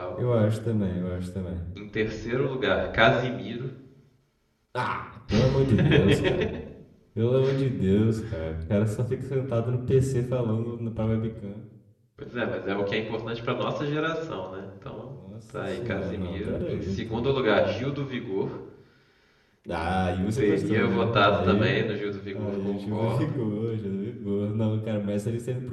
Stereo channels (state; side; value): identical; both; correlation 1.00